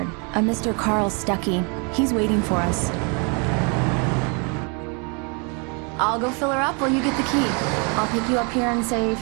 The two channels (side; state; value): left; quieter; 34.3 dB